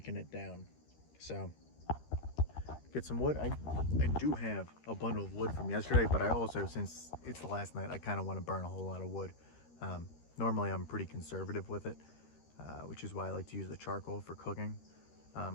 it down. So get some wood. I do have a bundle of wood from yesterday, but I also, since it's the last night, I kind of want to burn a whole lot of wood. Normally I'm pretty conservative with it, which is why I like to use the charcoal for cooking.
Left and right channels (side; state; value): right; late; 13 ms